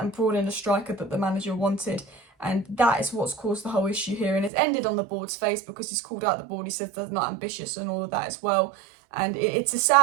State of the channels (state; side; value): drops out; left; at 4.5 s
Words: brought in a striker that the manager wanted. And that is what's caused the whole issue here. And it's ended on the board's face, because he's called out the board. He said they're not ambitious and all of that as well. And it's a